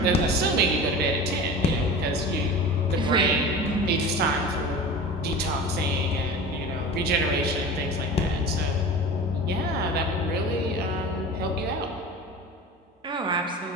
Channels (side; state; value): both; normal; correlation 0.34